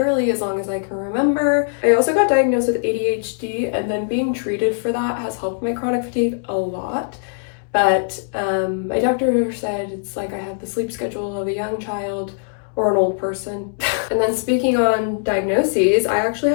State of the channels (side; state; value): right; silent; 65 dB below the other